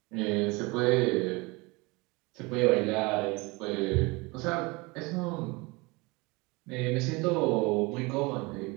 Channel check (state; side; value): quieter; left; 25.4 dB